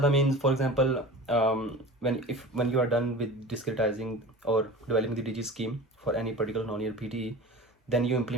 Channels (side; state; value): both; normal; correlation 0.36